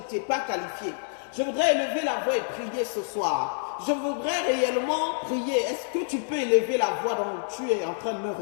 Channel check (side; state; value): right; silent; digital silence